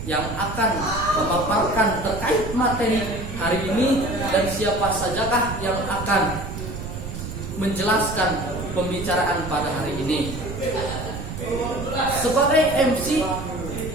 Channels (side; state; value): right; noise; rumble, 8 dB below the sound